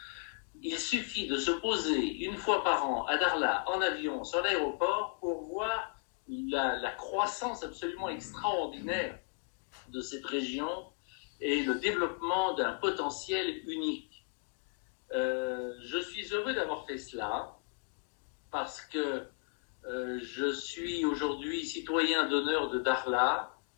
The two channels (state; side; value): silent; right; 55 dB below the other